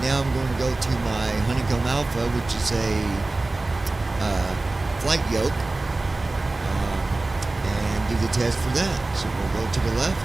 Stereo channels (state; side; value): quieter; left; 3.1 dB